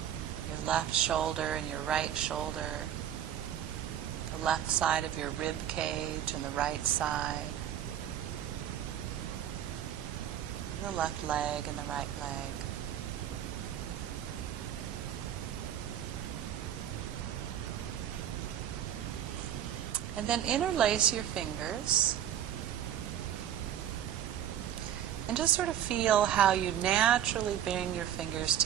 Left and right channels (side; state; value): left; quieter; 10.5 dB